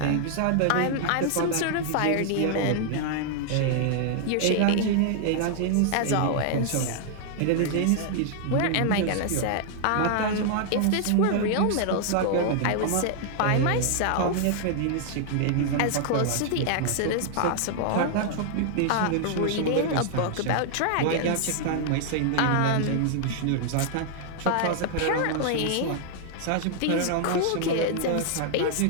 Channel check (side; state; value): both; different; correlation 0.00